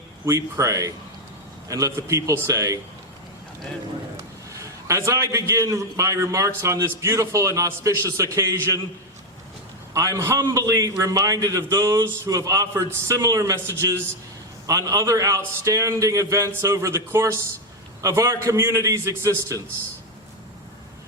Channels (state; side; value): normal; both; correlation 0.06